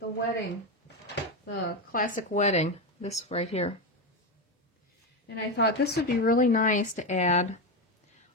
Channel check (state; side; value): normal; both; correlation 0.12